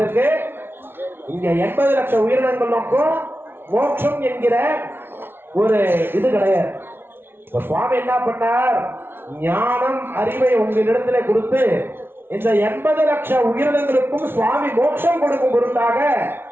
இங்க 80 லட்சம் உயிரினங்களுக்கும் மோட்சம் என்கிற ஒரு இது கிடையாது. சுவாமி என்ன பண்ணார்? ஞானம் அறிவை உங்களிடத்துல கொடுத்து இந்த 80 லட்சம் உயிரினங்களுக்கும் சுவாமி மோட்சம் கொடுக்கும் பொருட்டாக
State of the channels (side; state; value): left; late; 0.11 ms